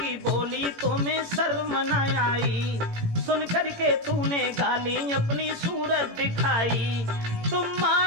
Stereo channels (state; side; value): late; left; 18 ms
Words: बोली, तुम्हें शर्म न आई, सुनकर के तूने गाली अपनी सूरत दिखाई। तुम